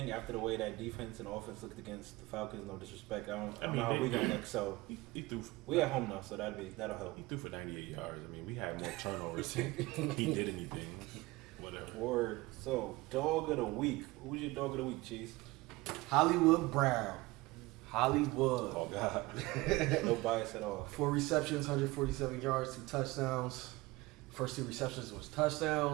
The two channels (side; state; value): left; quieter; 21.3 dB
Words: after the way that defense and offense looked against the Falcons. No disrespect, I don't know how we gonna look. So He threw. we at home now, so that'll help. He threw for 98 yards. I mean, we had more turnovers. He did anything. Whatever. Word. So dog of the week. Who's your dog of the week, Cheese? Hollywood Brown. Hollywood. Oh God. No bias at all. 4 receptions, 147 yards, 2 touchdowns. First 2 receptions was